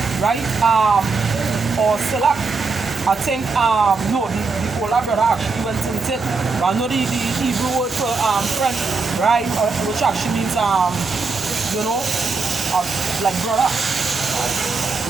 or selak, I think, no, the older brother actually went into it. But I know the Hebrew word for friend, right, which actually means, like brother.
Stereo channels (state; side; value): quieter; left; 4.3 dB